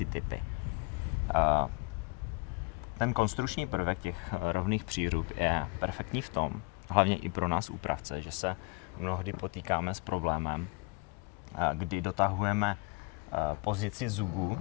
typy. Ten konstrukční prvek těch rovných přírub je perfektní v tom, hlavně i pro nás úpravce, že se mnohdy potýkáme s problémem, kdy dotahujeme pozici zubů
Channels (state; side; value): quieter; right; 28.5 dB